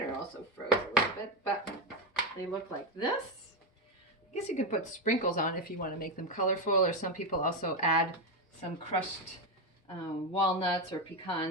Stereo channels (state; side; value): normal; both; correlation 0.09